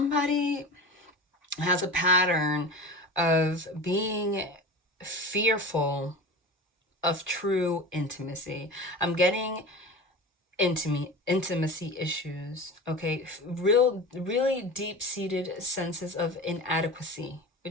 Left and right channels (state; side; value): normal; both; correlation 0.32